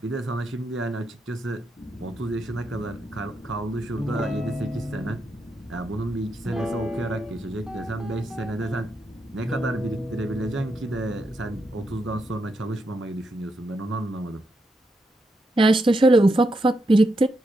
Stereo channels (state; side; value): normal; both; correlation 0.82